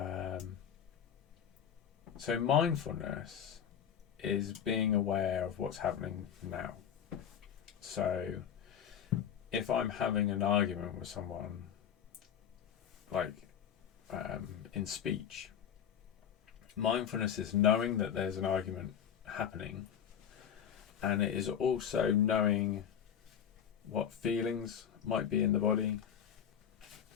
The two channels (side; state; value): right; quieter; 8.8 dB